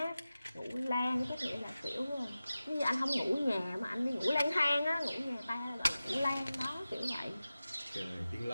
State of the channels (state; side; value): inverted; both; correlation -0.95